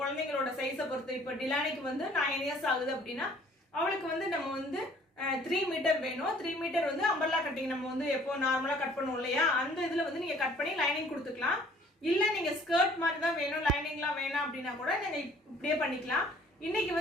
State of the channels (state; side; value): normal; both; correlation 0.56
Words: குழந்தைங்களோட சைஸை பொறுத்து. இப்போ டிலானிக்கு வந்து 9 இயர்ஸ் ஆகுது அப்படின்னா அவளுக்கு வந்து நம்ம வந்து 3 மீட்டர் வேணும். 3 மீட்டர் வந்து அம்பர்லா கட்டிங் நம்ம வந்து எப்போ நார்மலா கட் பண்ணுவோம் இல்லையா, அந்த இதுல வந்து நீங்க கட் பண்ணி லைனிங் கொடுத்துக்கலாம். இல்ல நீங்க ஸ்கர்ட் மாதிரி தான் வேணும், லைனிங்லாம் வேணாம் அப்படின்னா கூட நீங்க இப்படியே பண்ணிக்கலாம். இன்னைக்கு